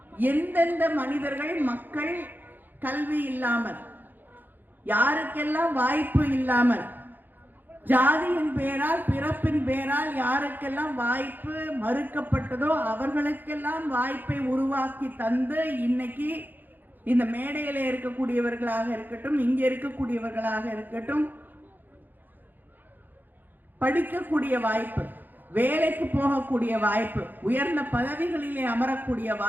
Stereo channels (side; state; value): left; late; 0.088 ms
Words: எந்தெந்த மனிதர்கள், மக்கள் கல்வி இல்லாமல், யாருக்கெல்லாம் வாய்ப்பு இல்லாமல், ஜாதியின் பேரால், பிறப்பின் பேரால் யாருக்கெல்லாம் வாய்ப்பு மறுக்கப்பட்டதோ அவர்களுக்கெல்லாம் வாய்ப்பை உருவாக்கி தந்து இன்னைக்கு இந்த மேடையில இருக்கக்கூடியவர்களாக இருக்கட்டும், இங்க இருக்கக்கூடியவர்களாக இருக்கட்டும், படிக்கக்கூடிய வாய்ப்பு, வேலைக்கு போகக்கூடிய வாய்ப்பு, உயர்ந்த பதவிகளிலே அமரக்கூடிய